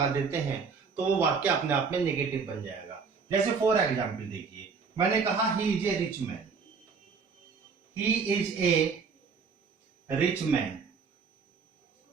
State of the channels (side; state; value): left; quieter; 5.4 dB